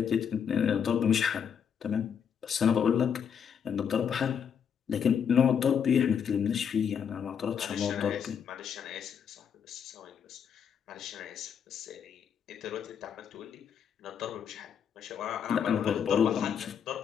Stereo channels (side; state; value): right; quieter; 7.6 dB